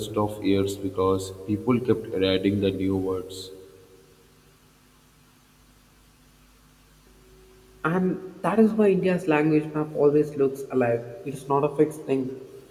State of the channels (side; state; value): both; identical; correlation 1.00